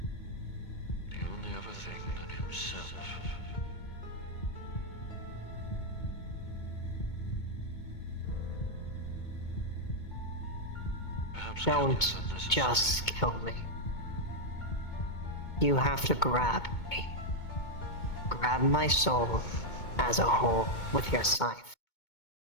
The only other thing than himself. Perhaps killing Don't is unnecessary. just kill me. You have to grab me. Grab my soul as a whole with your scythe.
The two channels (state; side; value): late; right; 2.2 ms